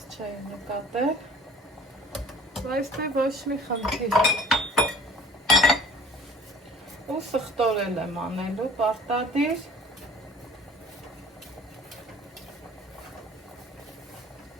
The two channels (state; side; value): normal; both; correlation 0.50